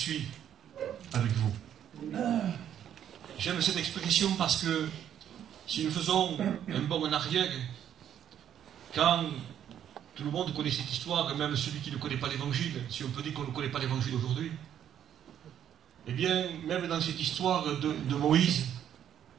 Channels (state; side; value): quieter; left; 9.9 dB